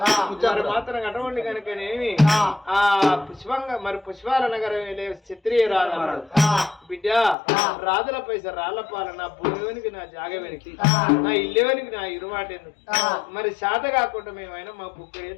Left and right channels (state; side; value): drops out; right; at 7.4 s